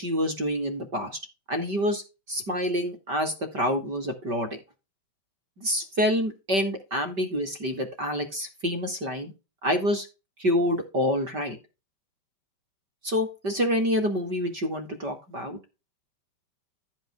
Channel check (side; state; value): left; late; 5.1 ms